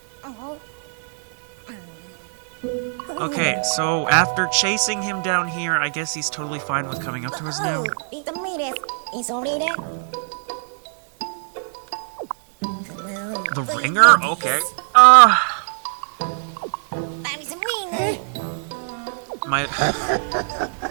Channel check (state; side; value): silent; left; digital silence